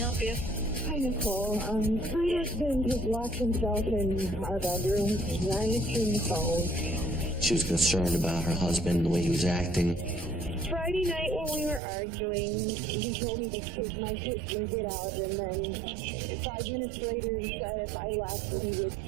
you? Hi, Nicole. My husband has locked himself in our bedroom. He's not answering the phone. She was concerned about her husband and the way he was acting. Friday night when we were arguing, he told me to take my sister and get out, and then 5 minutes later he said if I left he would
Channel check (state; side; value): drops out; left; at 11.8 s